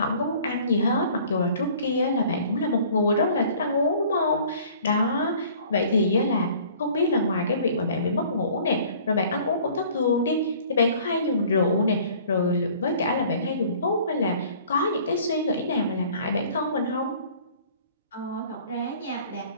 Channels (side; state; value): both; inverted; correlation -0.51